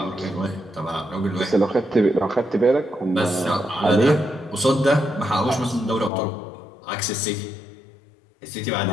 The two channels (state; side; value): drops out; right; at 6.1 s